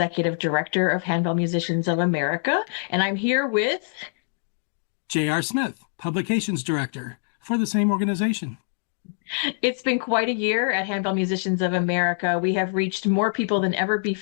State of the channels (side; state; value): right; silent; digital silence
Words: Director of Handbell Musicians of America, and I'm here with J.R. Smith, Publications Director for the same organization. It's been quite a year at Handbell Musicians of America. We have reached more people than ever